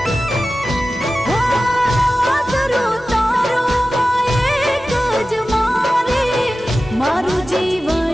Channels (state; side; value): normal; both; correlation 0.95